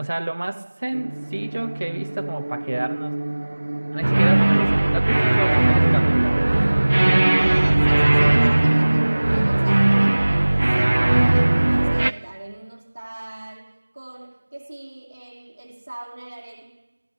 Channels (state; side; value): inverted; both; correlation -1.00